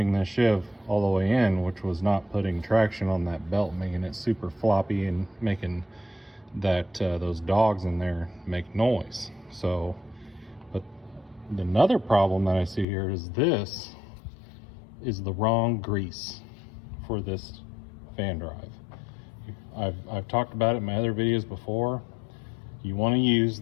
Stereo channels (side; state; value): right; drops out; at 12.9 s